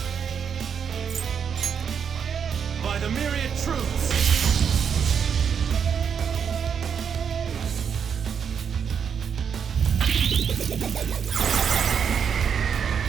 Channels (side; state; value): left; quieter; 7.2 dB